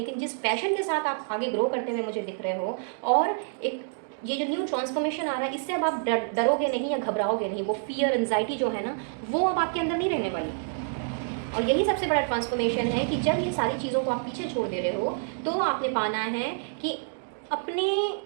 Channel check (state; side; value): silent; left; digital silence